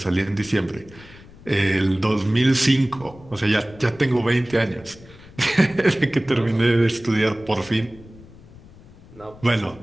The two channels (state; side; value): noise; left; rumble, 21 dB below the sound